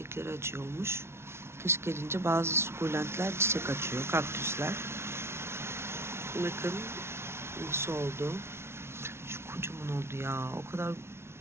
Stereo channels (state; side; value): late; left; 0.12 ms